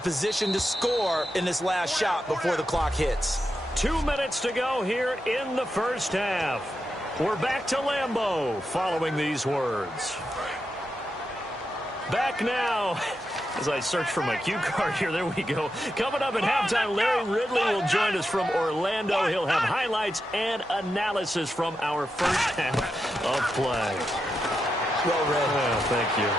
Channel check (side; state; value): both; normal; correlation 0.87